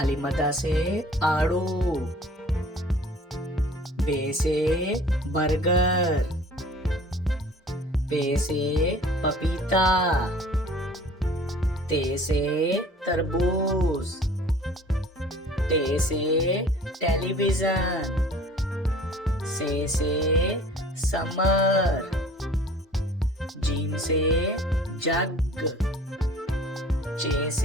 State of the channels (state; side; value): normal; both; correlation 0.49